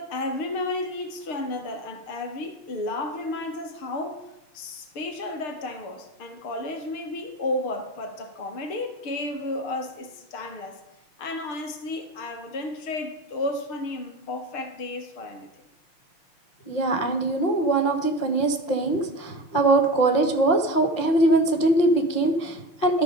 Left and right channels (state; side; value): late; right; 6.6 ms